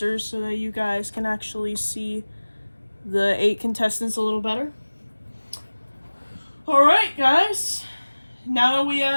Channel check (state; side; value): inverted; both; correlation -1.00